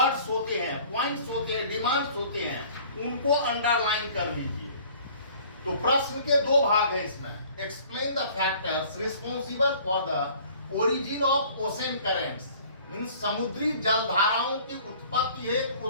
होते हैं, पॉइंट्स होते हैं, डिमांड्स होते हैं, उनको अंडरलाइन कर लीजिए। तो प्रश्न के दो भाग हैं इसमें। Explain the factors responsible for the origin of ocean currents, means समुद्री जलधाराओं की उत्पत्ति हेतु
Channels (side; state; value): both; inverted; correlation -0.51